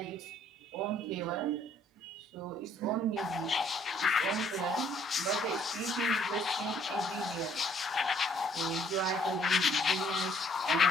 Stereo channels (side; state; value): both; normal; correlation 0.63